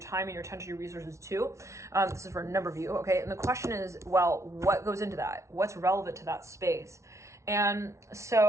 time and your attention, your resources to. This is for a number of you, okay? And the question is, well, what goes into that? What's relevant to that space? And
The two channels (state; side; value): late; left; 0.14 ms